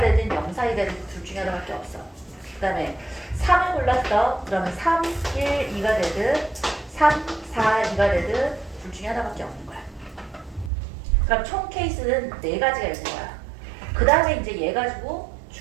되든 0, 4, 2가 되든 둘 중에 하나밖에 없어. 그 다음에 3을 골랐어. 그러면 3, 1, 2가 되든 3, 4, 2가 되든 둘 중에 하나밖에 없는 거야. 그럼 총 케이스는 4가지가 있는 거야. 그 다음에 이제 얘 가지고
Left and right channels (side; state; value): left; drops out; at 10.7 s